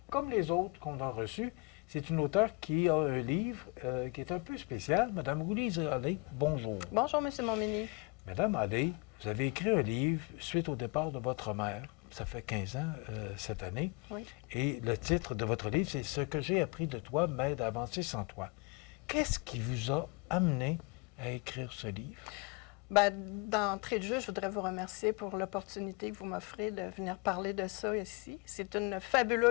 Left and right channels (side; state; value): right; quieter; 29.5 dB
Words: comme les autres qu'on a reçues. C'est une auteure qui a un livre qui est un peu spécial. Madame Louise Allais, bonjour. Bonjour, M. Montminy. Madame Allais, vous avez écrit un livre suite au départ de votre mère. Ça fait 15 ans cette année. Oui. Et le titre de votre livre, c'est « Ce que j'ai appris de toi m'aide à avancer sans toi ». Qu'est-ce qui vous a amené à écrire ce livre? Bien, d'entrée de jeu, je voudrais vous remercier pour l'opportunité que vous m'offrez de venir parler de ça ici. C'est une